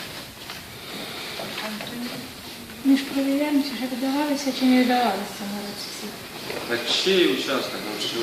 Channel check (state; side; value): identical; both; correlation 1.00